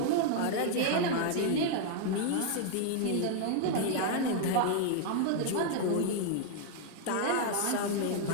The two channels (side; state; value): both; different; correlation 0.00